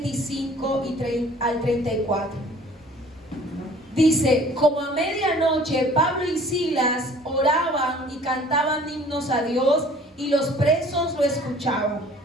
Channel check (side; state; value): both; normal; correlation 0.51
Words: al 34. Dice: como a medianoche Pablo y Silas oraban y cantaban himnos a Dios, y los presos lo escuchaban.